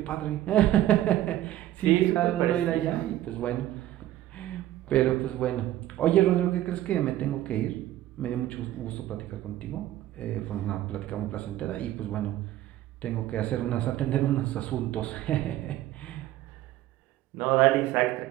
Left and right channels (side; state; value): left; quieter; 14.0 dB